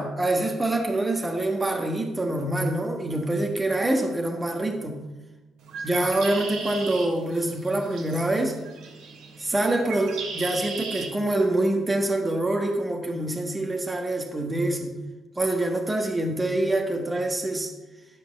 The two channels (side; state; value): both; normal; correlation 0.88